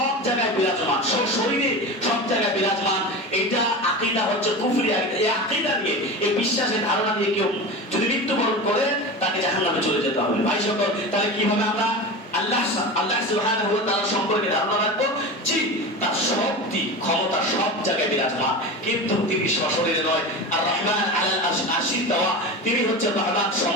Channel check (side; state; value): both; normal; correlation 0.27